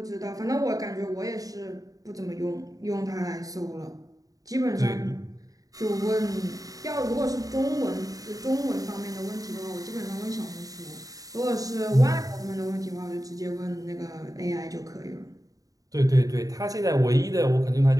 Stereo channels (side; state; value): left; late; 0.17 ms